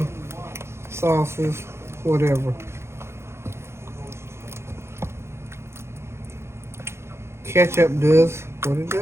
sauces, whatever, ketchup does what it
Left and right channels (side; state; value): left; late; 0.13 ms